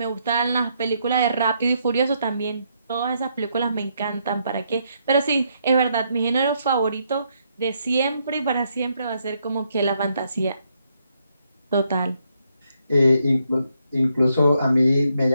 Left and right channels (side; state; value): both; inverted; correlation -0.76